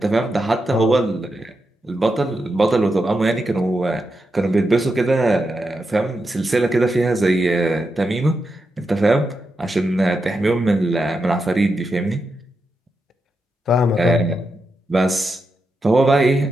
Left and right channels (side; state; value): both; normal; correlation 0.86